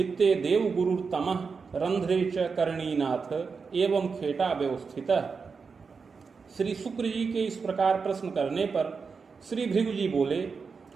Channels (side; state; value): left; quieter; 5.2 dB